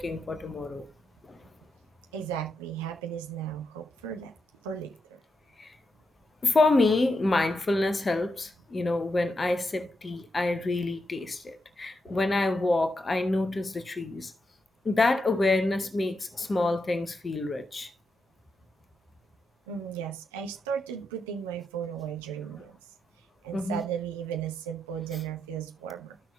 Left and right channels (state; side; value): normal; both; correlation 0.84